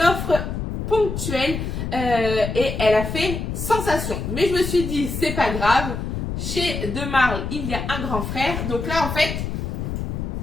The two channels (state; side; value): noise; left; rumble, 4 dB below the sound